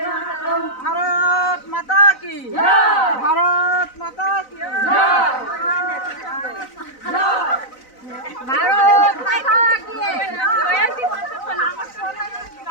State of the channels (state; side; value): late; right; 4.0 ms